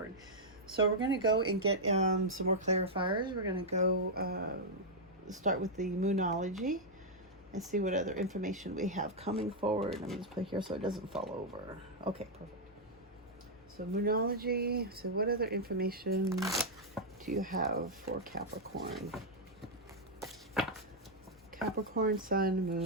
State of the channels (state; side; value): normal; both; correlation -0.04